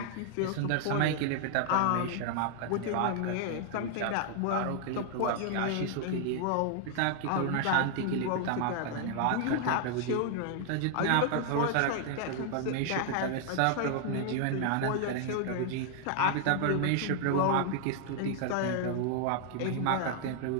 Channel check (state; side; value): different; both; correlation 0.00